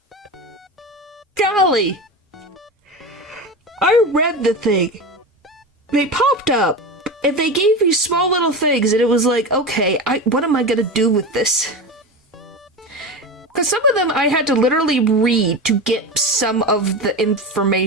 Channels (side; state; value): both; normal; correlation 0.24